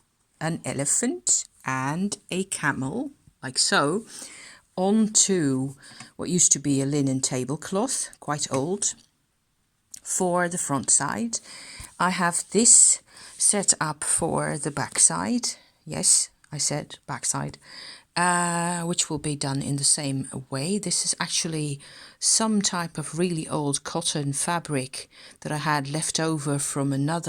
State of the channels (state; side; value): identical; both; correlation 1.00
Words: an elephant and a camel, like so, onto what used to be a linen tablecloth, quite old, for the front side. I have this set up for the back side. Yes, I said backside, which will be done in the same way. This is actually some type of really old cotton fabric that I had left over from